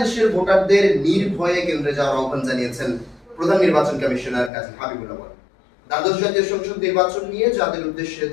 দেশের ভোটারদের নির্ভয়ে কেন্দ্রে যাওয়ার আহ্বান জানিয়েছেন প্রধান নির্বাচন কমিশনার কাজী হাবিবুল্লাহ দ্বাদশ জাতীয় সংসদ নির্বাচন নিয়ে জাতির উদ্দেশ্যে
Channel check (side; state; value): right; drops out; at 4.5 s